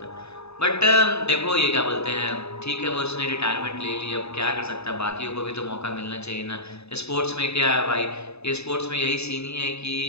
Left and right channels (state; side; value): late; right; 0.79 ms